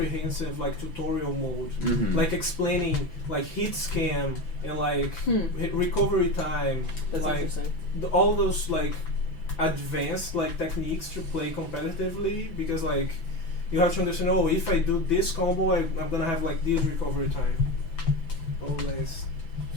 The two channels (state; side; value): late; right; 6.0 ms